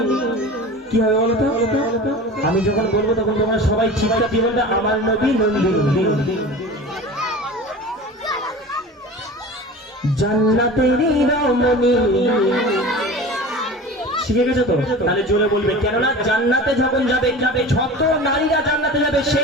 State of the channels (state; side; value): normal; both; correlation 0.35